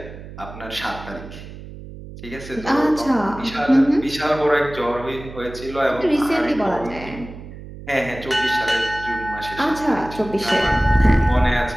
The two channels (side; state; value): right; noise; hum, 14 dB below the sound